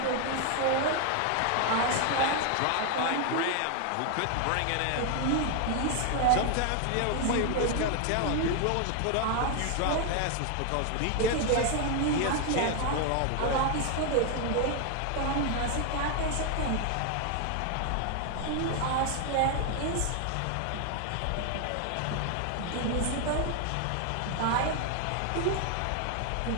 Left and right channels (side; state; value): both; different; correlation 0.00